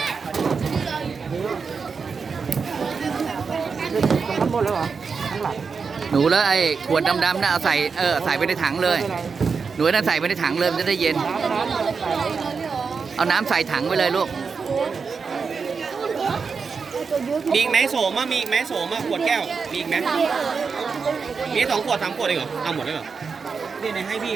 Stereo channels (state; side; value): quieter; left; 5.3 dB